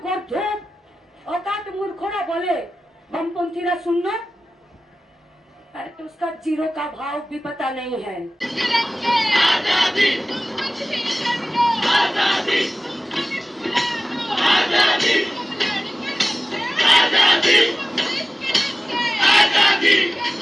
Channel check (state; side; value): normal; both; correlation 0.97